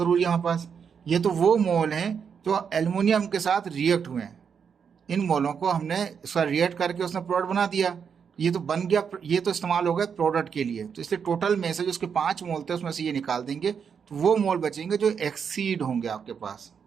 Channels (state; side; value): quieter; left; 6.8 dB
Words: है हमारे पास। ये तो वो मोल हैं जो एल्युमिनियम के साथ रिएक्ट हुए हैं, इन मोलों को हमने उसका रिएक्ट करके उसने प्रोडक्ट बना दिया, ये तो बन गया, ये तो इस्तेमाल हो गया प्रोडक्ट के लिए। तो इसलिए टोटल में से जो उसके 5 मोल थे उसमें से ये निकाल देंगे, तो वो मोल बचेंगे जो एक्सीड होंगे आपके पास।